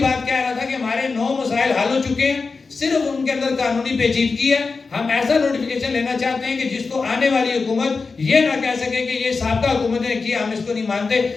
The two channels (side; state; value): right; quieter; 4.4 dB